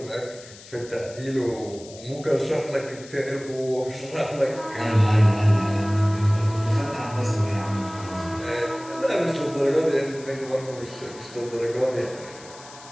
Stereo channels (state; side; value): noise; left; hiss, 19 dB below the sound